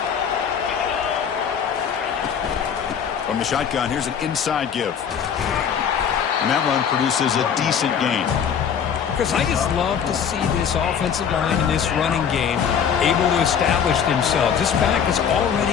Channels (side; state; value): right; quieter; 7.7 dB